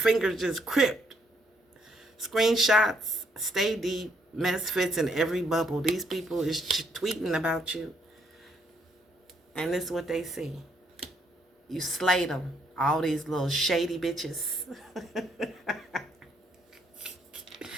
just cripped. Screenshots, stay deep, mess fits in every bubble. These people is tweeting about you. And this is what they see. You slayed them. All these little shady bitches.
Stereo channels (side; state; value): both; normal; correlation 0.71